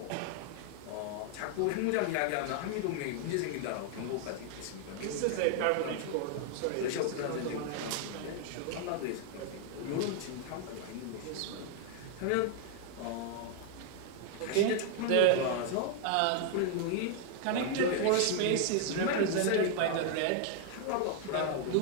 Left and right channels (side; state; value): both; different; correlation 0.00